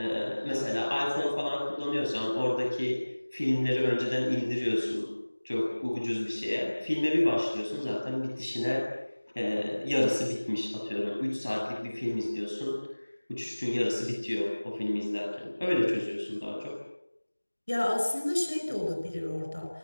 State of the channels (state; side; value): inverted; both; correlation -1.00